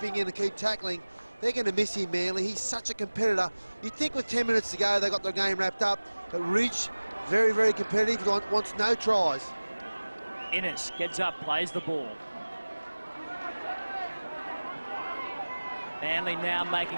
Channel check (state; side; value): inverted; both; correlation -1.00